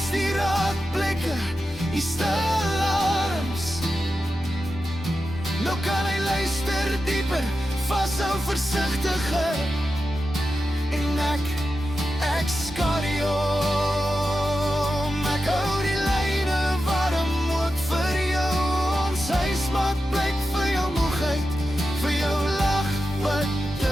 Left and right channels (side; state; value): both; normal; correlation 0.91